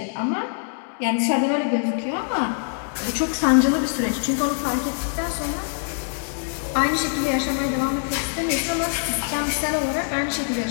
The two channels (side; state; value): right; silent; digital silence